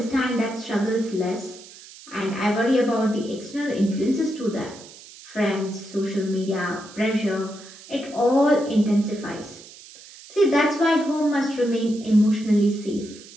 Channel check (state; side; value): noise; right; hiss, 19 dB below the sound